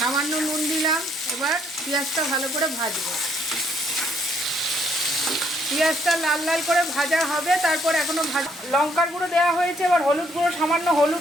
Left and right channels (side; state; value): both; normal; correlation 0.69